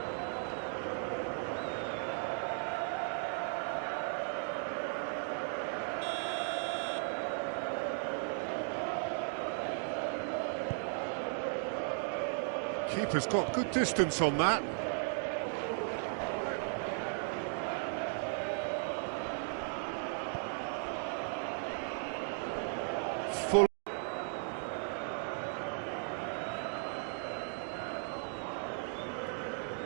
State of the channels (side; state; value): left; silent; 53 dB below the other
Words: Keeper's got good distance on that. Full.